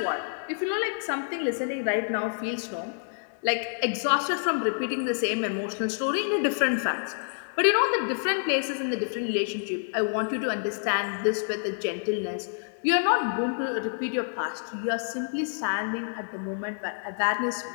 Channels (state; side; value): silent; right; 59 dB below the other